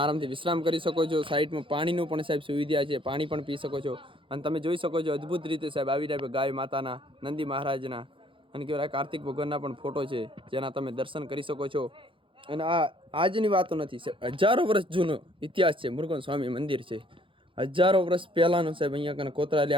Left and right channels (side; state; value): left; late; 0.25 ms